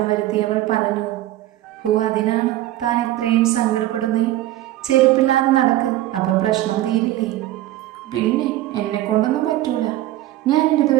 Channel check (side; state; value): left; quieter; 15.0 dB